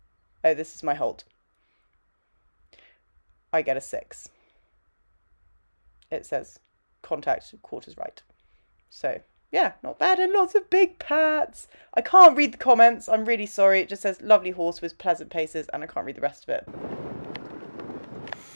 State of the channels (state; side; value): inverted; both; correlation -1.00